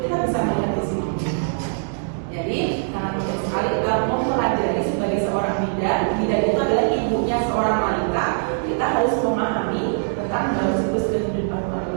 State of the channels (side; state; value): left; silent; digital silence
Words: bisa melihat di sini. Jadi sangat penting sekali kita mempelajari sebagai seorang bidan. Bidan itu adalah ibunya seorang wanita. Kita harus memahami tentang dalam siklus kehidupan